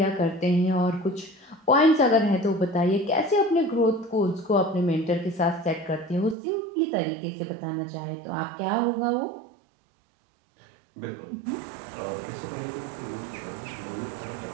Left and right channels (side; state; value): left; drops out; at 6.4 s